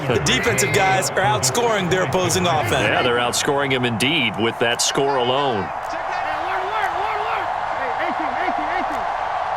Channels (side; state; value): both; identical; correlation 1.00